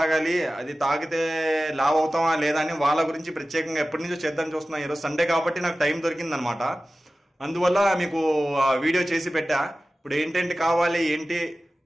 అది తాగితే లావ్ అవుతామా లేదా అని వాళ్ళ గురించి ప్రత్యేకంగా ఎప్పటి నుంచో చేద్దాం చూస్తున్నాను. ఈరోజు సండే కాబట్టి నాకు టైం దొరికిందనమాట, అందువల్ల మీకు వీడియో చేసి పెట్టా. ఇప్పుడు ఏంటంటే కావాలి ఏంటి,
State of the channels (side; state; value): both; normal; correlation 0.96